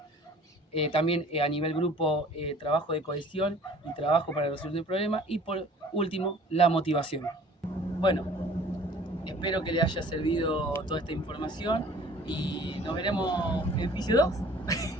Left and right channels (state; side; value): normal; both; correlation 0.50